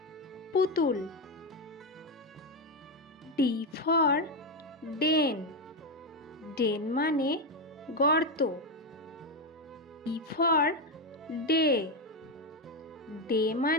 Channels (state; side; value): normal; both; correlation 0.09